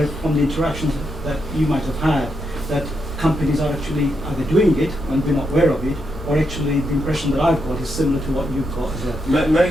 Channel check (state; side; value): normal; both; correlation 0.82